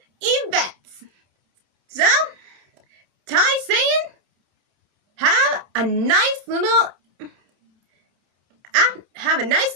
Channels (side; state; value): left; late; 29 ms